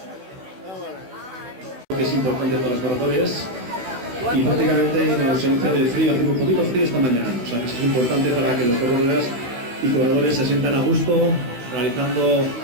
que es importante para los corredores, y prácticamente con la ausencia de frío, hace un poquito frío esta mañana, o sea que es importante para que los corredores se sientan a gusto realizando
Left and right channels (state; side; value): late; left; 16 ms